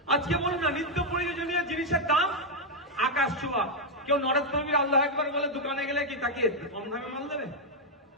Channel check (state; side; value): normal; both; correlation 0.00